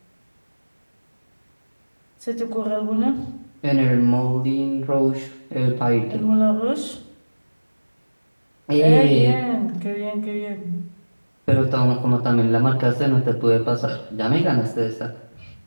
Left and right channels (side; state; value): both; inverted; correlation -1.00